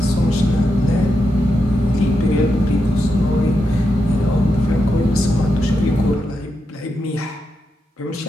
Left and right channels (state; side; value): normal; both; correlation 0.86